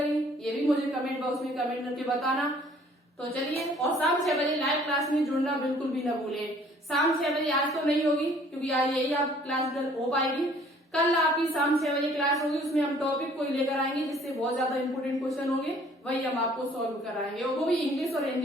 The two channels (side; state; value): both; normal; correlation 0.57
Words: ये भी मुझे कमेंट बॉक्स में कमेंट करके बताना। तो चलिए, और शाम 6 बजे लाइव क्लास में जुड़ना बिल्कुल भी न भूले। शाम 6 बजे आज तो नहीं होगी क्योंकि आज यही आप क्लास हो पाएगी, कल आपकी शाम 6 बजे क्लास होगी, उसमें हम टॉपिक कोई लेकर आएंगे जिससे बहुत ज्यादा इंपोर्टेंट क्वेश्चन होंगे, वही हम आपको सॉल्व कराएंगे, और वो भी इंग्लिश और